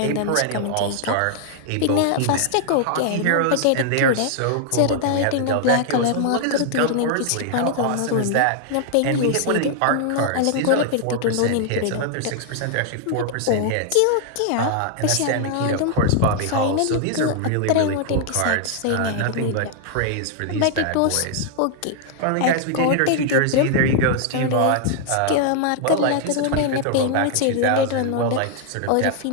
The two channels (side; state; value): both; different; correlation 0.00